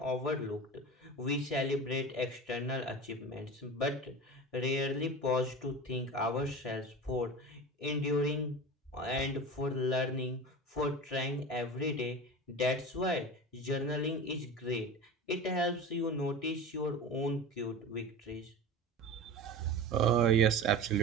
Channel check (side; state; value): both; normal; correlation 0.31